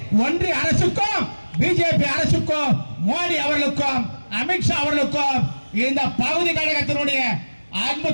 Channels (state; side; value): inverted; both; correlation -1.00